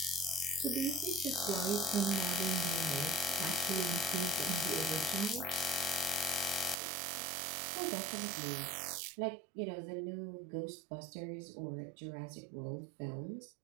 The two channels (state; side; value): drops out; left; at 6.8 s